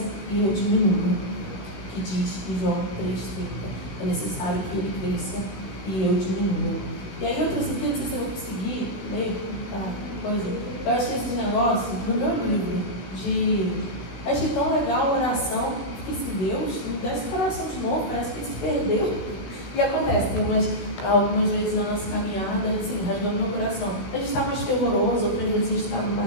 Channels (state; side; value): late; right; 16 ms